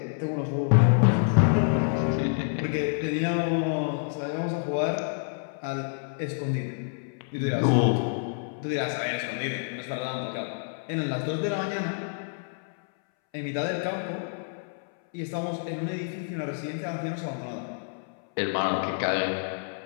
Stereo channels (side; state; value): right; silent; 59 dB below the other